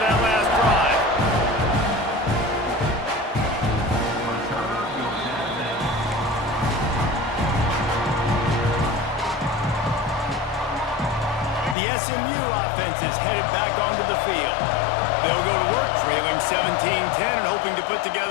last drive. The SMU offense is headed back onto the field. They'll go to work trailing 17-10 and hoping to put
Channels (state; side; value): drops out; right; at 11.8 s